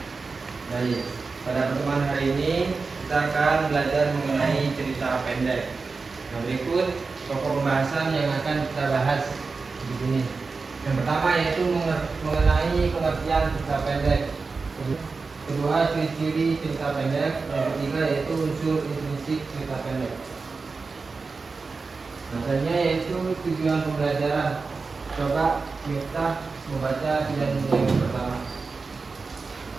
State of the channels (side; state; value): left; quieter; 4.3 dB